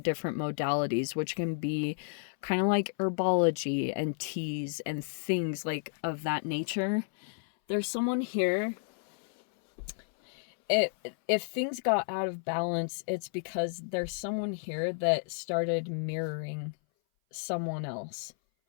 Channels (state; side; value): silent; right; 57 dB below the other